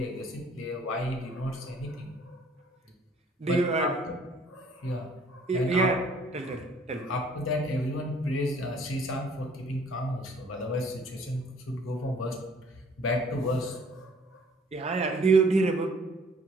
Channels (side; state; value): both; normal; correlation 0.58